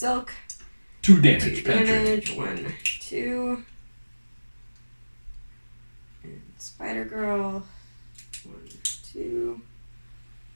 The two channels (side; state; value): both; inverted; correlation -1.00